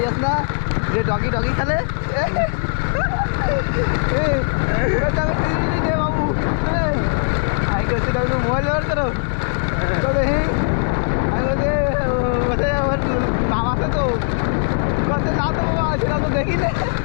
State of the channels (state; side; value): silent; right; digital silence